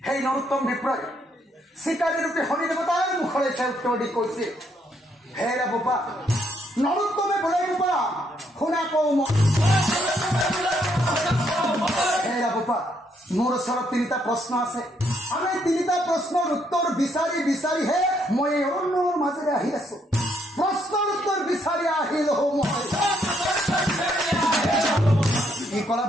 সেই নৰোত্তম বিপ্ৰই চিকাৰী ৰূপে শনি দেৱতাৰ মুখলৈ চাই উত্তৰ দি কৈছে হে বাবা নৰোত্তমে বোলে বাবা শুনা কওঁ হে বাবা মোৰ ওচৰত 3টা প্ৰশ্ন আছে আমি 3টা প্ৰশ্নৰ উত্তৰ বিচাৰিহে মই এই অৰণ্যৰ মাজেৰে আহি আছো প্ৰশ্নৰ উত্তৰ বিচাৰি আহিলো মই কি কলা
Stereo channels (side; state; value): both; normal; correlation 0.73